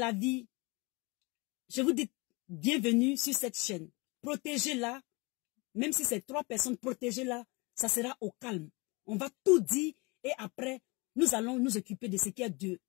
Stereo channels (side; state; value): right; quieter; 27.1 dB